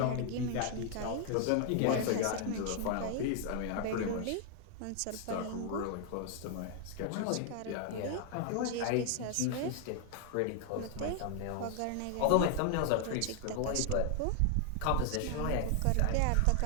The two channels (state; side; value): different; both; correlation 0.00